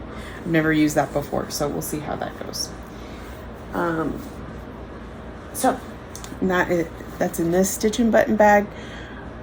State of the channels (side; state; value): both; identical; correlation 1.00